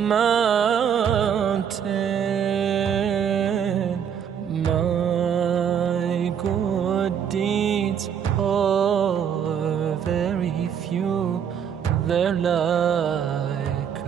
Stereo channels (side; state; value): left; quieter; 8.1 dB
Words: My good deeds are very few. They're like